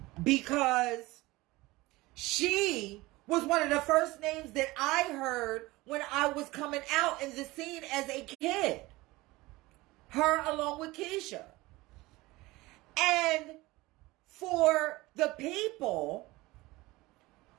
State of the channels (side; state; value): left; quieter; 20.4 dB